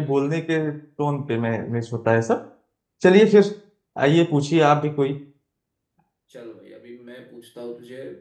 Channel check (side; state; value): both; identical; correlation 1.00